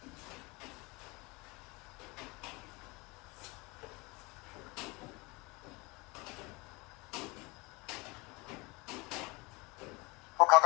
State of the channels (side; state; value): right; quieter; 25.5 dB